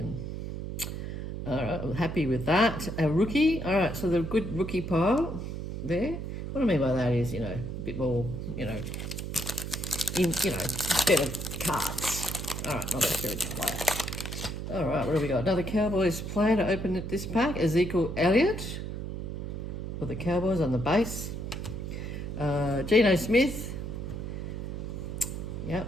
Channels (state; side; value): noise; right; hum, 6 dB below the sound